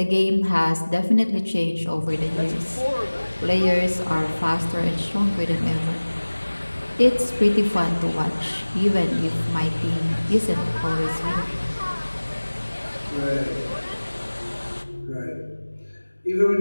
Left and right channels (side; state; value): both; inverted; correlation -1.00